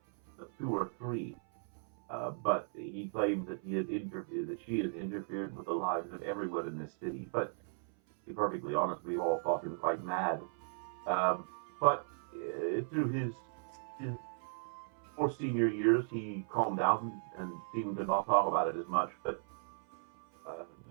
2 or 3. But he claimed that she had interfered with the lives of everyone in this city. But to be perfectly honest, we all thought him quite mad. But through his more senior years, he calmed down and seemed to not talk about it as much. But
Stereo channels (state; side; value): silent; left; 53 dB below the other